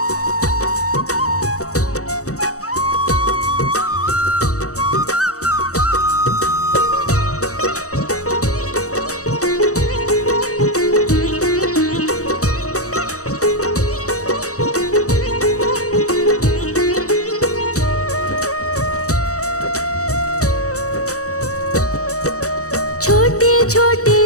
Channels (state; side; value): late; right; 0.65 ms